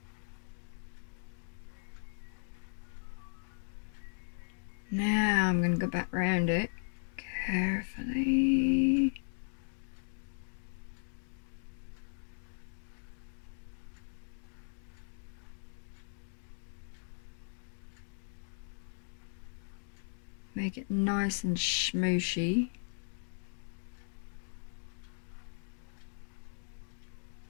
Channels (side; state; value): right; silent; digital silence